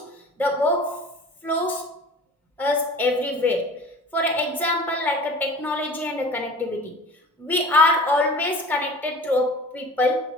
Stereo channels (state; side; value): normal; both; correlation 0.41